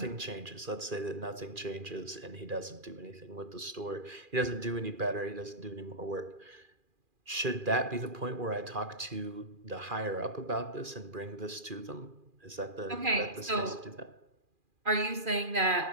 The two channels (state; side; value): late; left; 2.4 ms